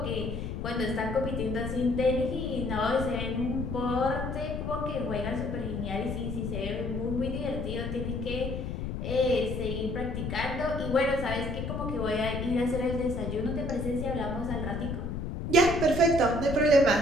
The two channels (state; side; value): noise; left; rumble, 4 dB below the sound